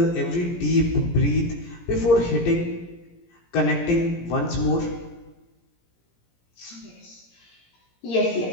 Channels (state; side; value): late; right; 17 ms